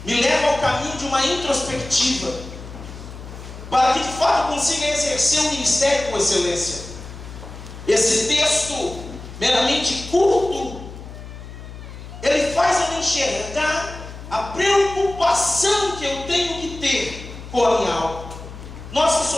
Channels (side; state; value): left; noise; hum, 13 dB below the sound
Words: me leva ao caminho de uma introspectiva, para que de fato consiga exercer o ministério com excelência. Esse texto, meramente curto, ele faz eu enxergar a preocupação que eu tenho que ter com a minha alma. Nós que